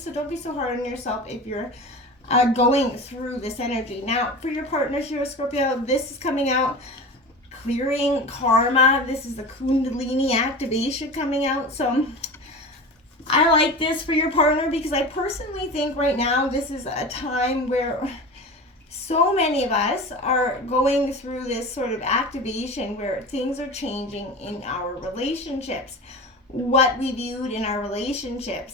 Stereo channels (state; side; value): normal; both; correlation 0.31